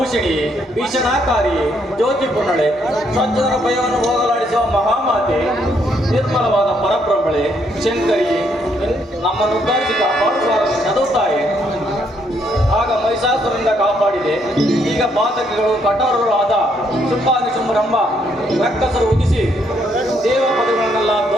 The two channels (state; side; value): normal; both; correlation 0.72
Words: ಭೀಷಣಾಕಾರಿ ಜ್ಯೋತಿ ಪುರ್ಣಳೆ ಸಜ್ಜನರ ಭಯವನ್ನು ಹೋಗಲಾಡಿಸುವ ಮಹಾಮಾತೆ ನಿರ್ಮಲವಾದ ಪರಬ್ರಹ್ಮಳೆ ಶಂಕರಿ ನಮ್ಮನ್ನು ಉದ್ಧರಿಸಿ ಕಾಪಾಡುವ ನದುತ್ತಾಯಿ. ಆಗ ಮಹಿಷಾಸುರರಿಂದ ಕಾಪಾಡಿದೆ. ಈಗ ಪಾತಕಿಗಳು ಕಠೋರಗಳಾದ ಶುಂಭಾನಿಶುಂಭರೆಂಬ ರಕ್ಕಸರು ಉದಿಸಿ ದೇವ ಪದಗಳನ್ನೆಲ್ಲ